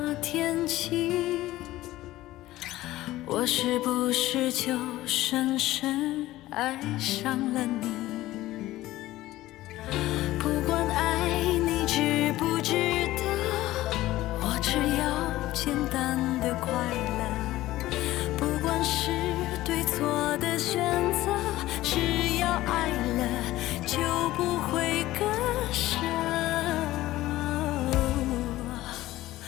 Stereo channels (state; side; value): quieter; right; 16.3 dB